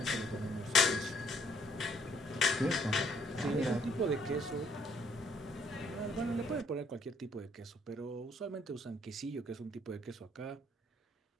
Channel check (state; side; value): normal; both; correlation 0.65